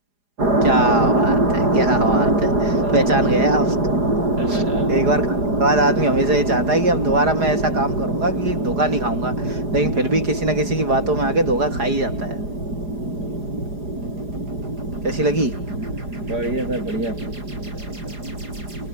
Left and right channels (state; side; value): late; left; 4.9 ms